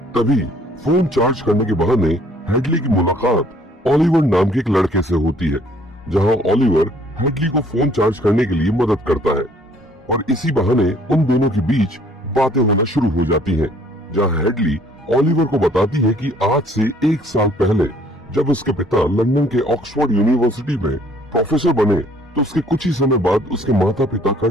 तभी फोन चार्ज करने के बहाने हेडली की मुलाकात ओलिवर नाम के एक लड़के से होती है, जहां ओलिवर हेडली को फोन चार्ज करने के लिए मदद करता है और इसी बहाने उन दोनों के बीच बातें होना शुरू हो जाती हैं, जहां हेडली ओलिवर को बताती है कि आज से 1 साल पहले जब उसके पिता लंदन के ऑक्सफोर्ड यूनिवर्सिटी में प्रोफेसर बने, तो उसके कुछ ही समय बाद उसके माता पिता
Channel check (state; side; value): normal; both; correlation 0.60